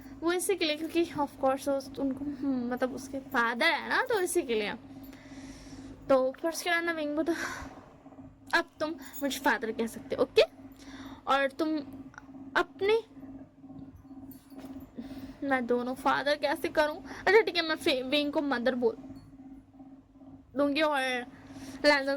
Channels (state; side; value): identical; both; correlation 1.00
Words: वो इसी के लिए क्योंकि ऑफ कोर्स उनको मतलब उसके फादर है ना, तो इसी के लिए। तो फिर उसके बाद ना विंग तो अब तुम मुझे फादर कह सकते हो, ओके। और तुम अपने, मैं दोनों फादर कैसे करूं? अच्छा ठीक है, मैं विंग को मदर बोल दूंगी और लैंजा